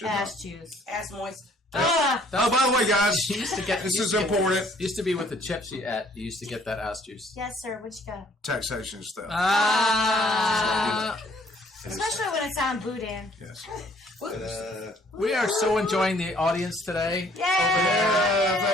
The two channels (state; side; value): normal; both; correlation 0.60